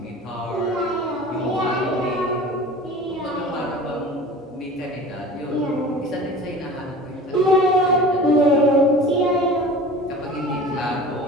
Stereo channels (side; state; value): both; normal; correlation 0.39